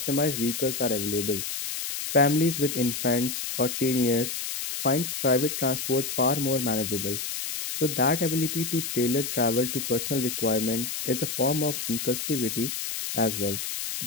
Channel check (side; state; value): left; noise; hiss, 4 dB below the sound